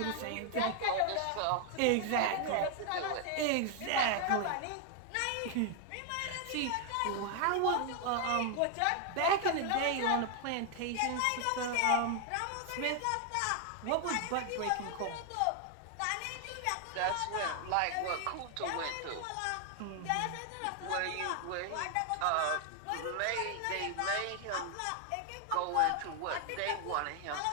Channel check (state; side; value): different; both; correlation 0.00